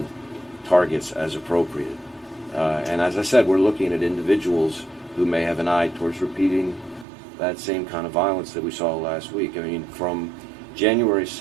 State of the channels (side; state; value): left; drops out; at 7.1 s